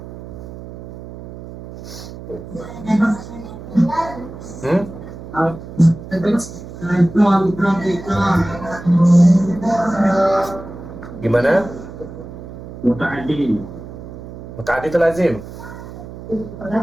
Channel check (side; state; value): right; noise; hum, 13 dB below the sound